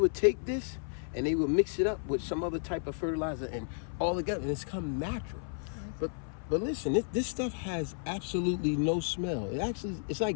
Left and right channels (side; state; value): right; silent; 56 dB below the other